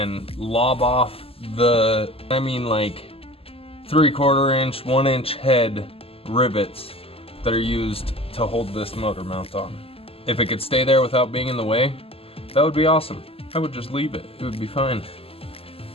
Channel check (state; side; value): late; right; 0.28 ms